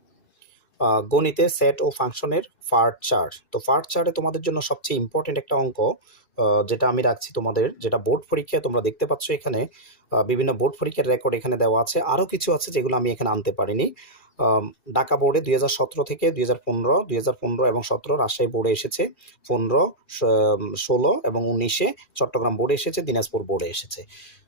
গণিতে সেট ও ফাংশনের পার্ট 4। তো পার্ট 4-এ তোমাদের জন্য সবচেয়ে ইম্পর্টেন্ট একটা অঙ্ক যেটা আমি রাখছি তোমাদের, যেটা বোর্ড পরীক্ষায় তোমরা দেখতে পাচ্ছ এখানে বিভিন্ন বোর্ড পরীক্ষার রেকর্ড এখানে দেওয়া আছে। আরও কিছু আছে যেগুলো আমি এখানে আনতে পারিনি। ঢাকা বোর্ডে 2017 থেকে 2015 এবং 17 রাজশাহী বোর্ডে এসেছে, 15, 16 এবং 19-এ চট্টগ্রাম বোর্ডে এসেছে, দিনাজপুর বোর্ডে এসেছে।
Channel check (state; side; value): late; right; 2.4 ms